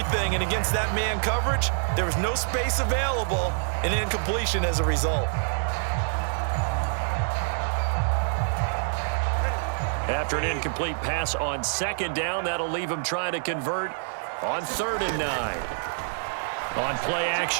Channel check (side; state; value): left; silent; digital silence